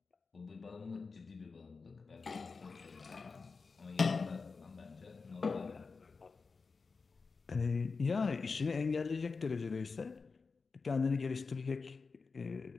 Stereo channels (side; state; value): right; quieter; 4.5 dB